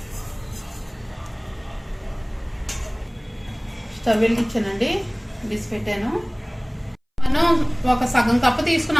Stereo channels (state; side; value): identical; both; correlation 1.00